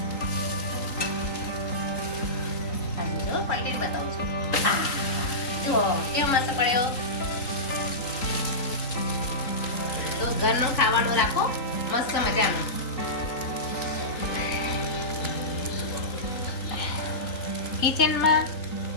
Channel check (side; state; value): right; late; 3.9 ms